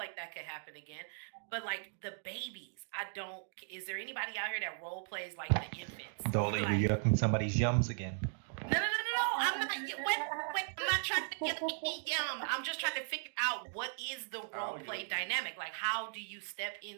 that could happen again. But like the babies, I don't. Is there anybody out here that role plays like the infants? Dolly, like, you're yucking somebody's yums again. No. I'm not. Wait. I'm not trying to get yum. I'm just trying to figure out what is the role play dynamic. Like, how do you step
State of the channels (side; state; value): left; silent; digital silence